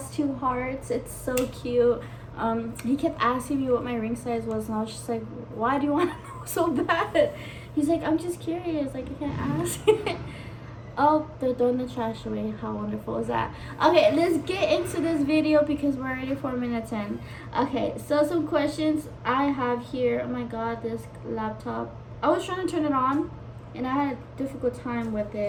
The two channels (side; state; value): both; identical; correlation 1.00